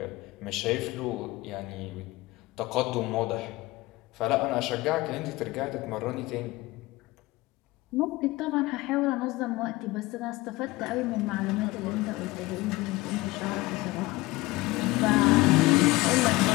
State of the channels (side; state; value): right; quieter; 20.5 dB